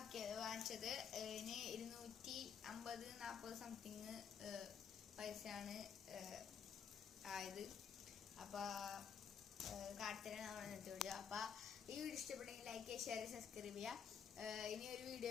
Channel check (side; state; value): right; quieter; 7.4 dB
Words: വാങ്ങിച്ചത്. ഇതിന് 250-40 സംതിങ് പൈസയാണ് ആയത്. അപ്പോൾ കാട്ടിത്തരാൻ നമ്മൾ ഇന്നത്തെ വീഡിയോ. അപ്പോൾ ഈ വീഡിയോ ഇഷ്ടപ്പെട്ടെങ്കിൽ ലൈക്ക് ചെയ്യുക, ഷെയർ, സബ്സ്ക്രൈബ് ചെയ്യുക. ഇനി ഒരു